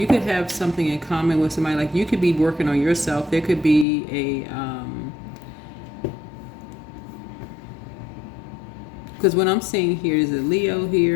You could have something in common with somebody. Like you could be working on yourself. There could be a, because what I'm seeing here is a Leo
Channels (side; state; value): right; drops out; at 3.9 s